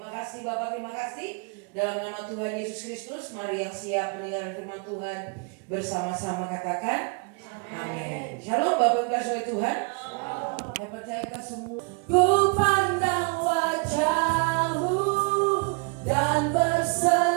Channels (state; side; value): quieter; left; 36.8 dB